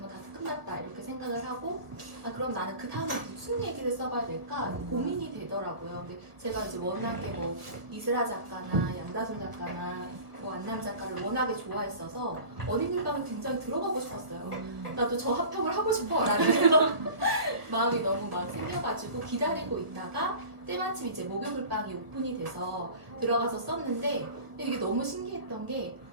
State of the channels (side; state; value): left; late; 1.2 ms